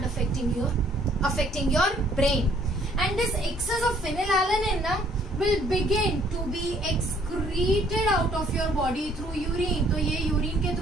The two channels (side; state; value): both; normal; correlation 0.62